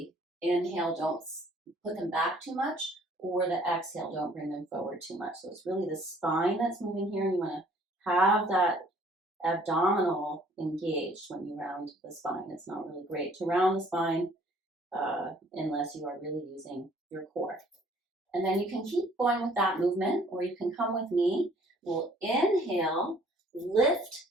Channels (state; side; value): normal; both; correlation 0.58